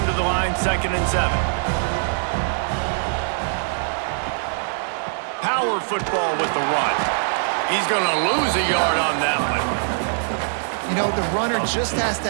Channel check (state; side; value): silent; left; 56 dB below the other